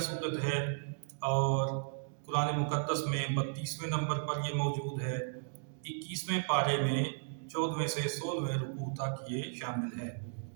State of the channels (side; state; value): left; silent; digital silence